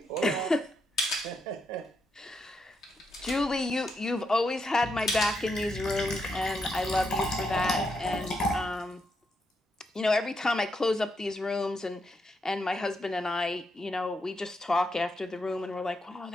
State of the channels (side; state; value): both; normal; correlation 0.81